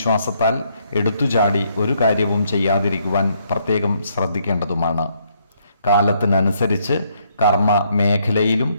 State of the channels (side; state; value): both; inverted; correlation -0.72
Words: എടുത്തുചാടി ഒരു കാര്യവും ചെയ്യാതിരിക്കുവാൻ പ്രത്യേകം ശ്രദ്ധിക്കേണ്ടതുമാണ്. കാലത്തിനനുസരിച്ച് കർമ്മ മേഖലയിലും